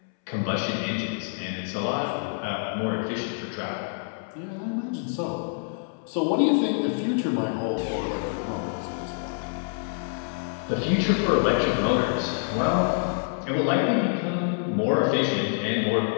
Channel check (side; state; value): right; silent; 60 dB below the other